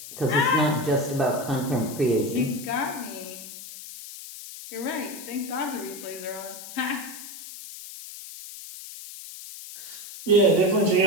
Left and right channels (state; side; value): noise; left; hiss, 13 dB below the sound